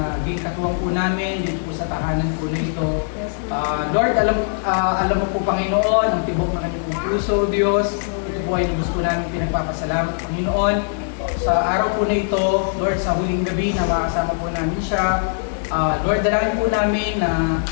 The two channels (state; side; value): silent; right; digital silence